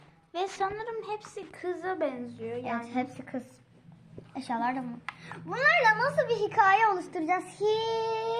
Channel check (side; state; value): both; identical; correlation 1.00